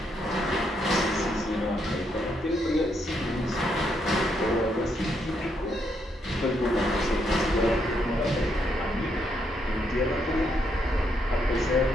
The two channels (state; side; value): normal; both; correlation 0.76